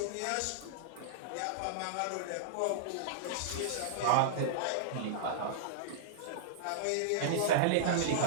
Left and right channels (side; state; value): both; different; correlation -0.02